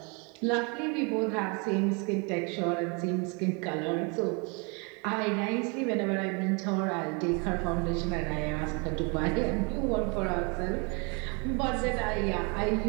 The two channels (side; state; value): left; quieter; 32.6 dB